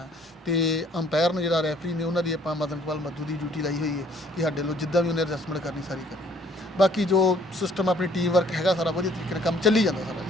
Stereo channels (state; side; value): normal; both; correlation 0.60